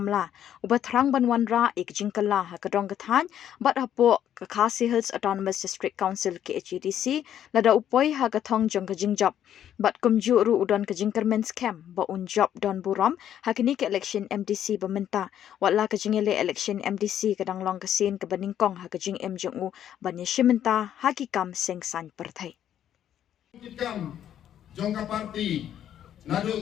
uba thrang banwanra kajing kala hakadong kathan, bat hapo Khasi Hills Autonomous District Council KHDC, lada upoy hagathong jong kajing job, bat kum ru udon kajing kermen scam, ba un job don buram, hakini ke election MDC bamenta, watla kajing ele election MDC kadang long kasin kabaningkong hakajing MJU banya shimenta hakikam sengsan perthai. Jongka party nadu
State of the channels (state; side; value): quieter; right; 10.4 dB